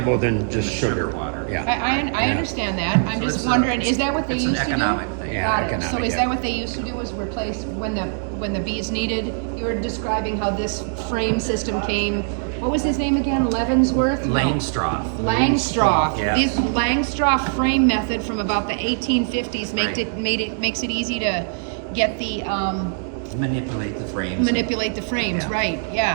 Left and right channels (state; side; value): silent; left; digital silence